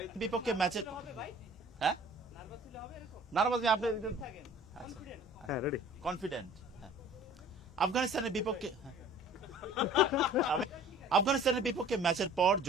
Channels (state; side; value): normal; both; correlation 0.49